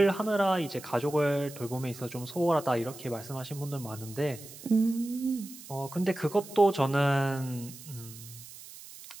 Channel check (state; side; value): noise; right; hiss, 16 dB below the sound